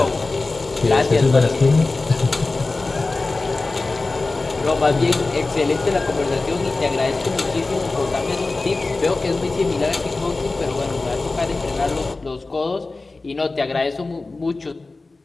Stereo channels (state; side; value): quieter; right; 3.4 dB